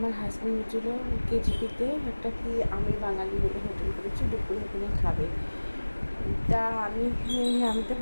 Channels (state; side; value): inverted; both; correlation -1.00